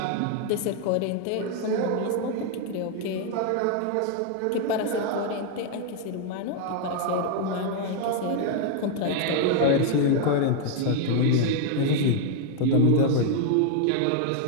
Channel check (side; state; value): both; different; correlation 0.01